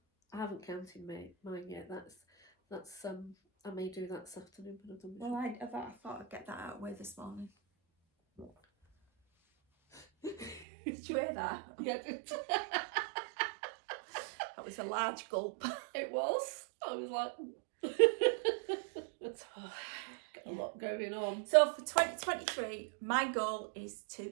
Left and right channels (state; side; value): drops out; left; at 10.7 s